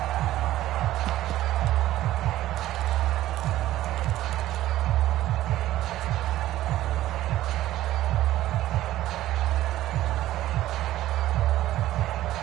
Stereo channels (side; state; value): left; quieter; 14.6 dB